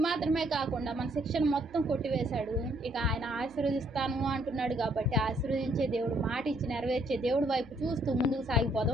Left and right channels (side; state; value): right; noise; hum, 24 dB below the sound